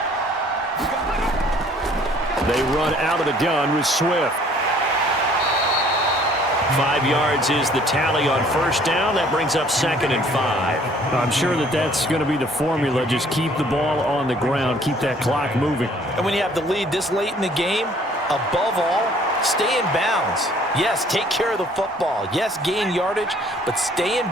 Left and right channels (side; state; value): both; normal; correlation 0.57